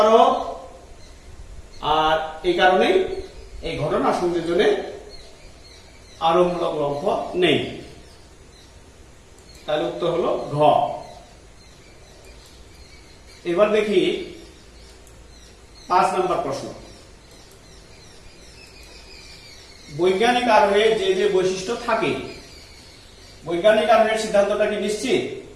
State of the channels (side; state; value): both; identical; correlation 1.00